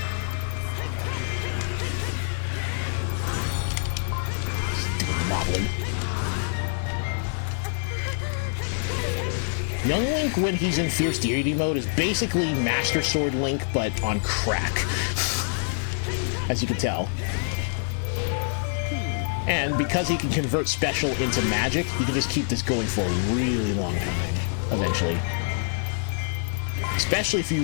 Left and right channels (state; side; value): silent; right; digital silence